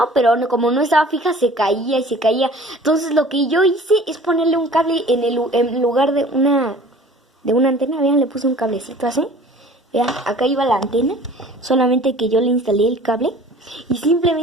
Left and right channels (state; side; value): normal; both; correlation 0.47